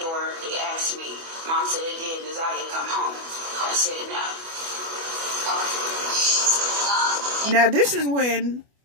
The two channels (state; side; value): late; left; 25 ms